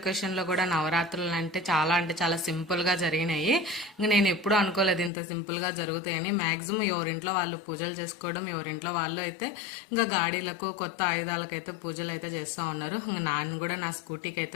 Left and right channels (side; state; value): right; drops out; at 5.1 s